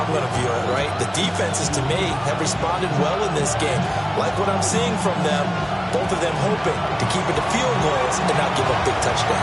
I'm going to view it, right? The defenses, to me, have responded well in this game. Like what I'm seeing from them, both of them hoping to keep it to field goals and not give up big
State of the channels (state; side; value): identical; both; correlation 1.00